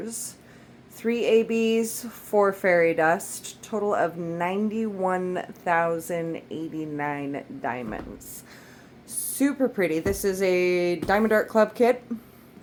3 ABs, 4 fairy dust, total of 91,089 diamonds. Super pretty. This is a Diamond Art Club kit.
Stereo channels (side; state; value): both; identical; correlation 1.00